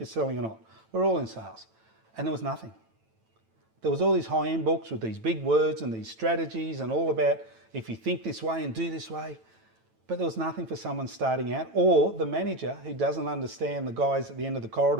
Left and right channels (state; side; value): late; left; 9.1 ms